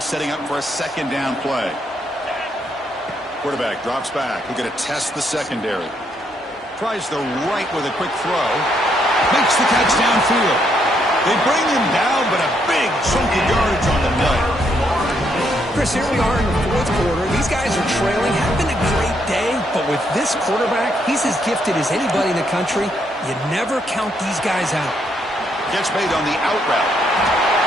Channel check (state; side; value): normal; both; correlation 0.74